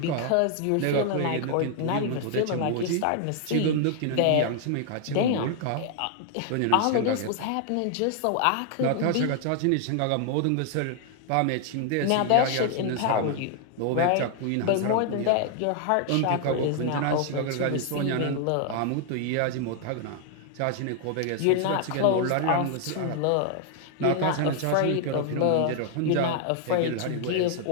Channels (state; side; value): different; both; correlation 0.00